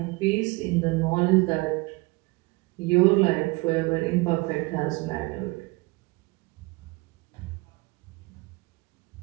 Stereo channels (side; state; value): left; quieter; 24.6 dB